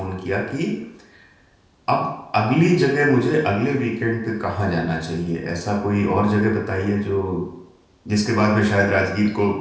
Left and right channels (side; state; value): both; identical; correlation 1.00